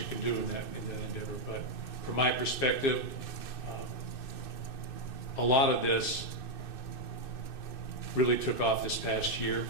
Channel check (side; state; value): right; late; 2.6 ms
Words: can do in that endeavor. But from my perspective, a lot of this really took off this past year,